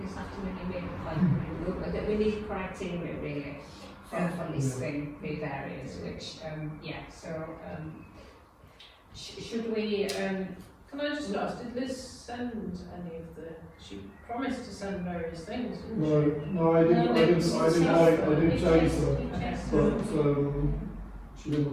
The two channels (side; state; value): both; identical; correlation 1.00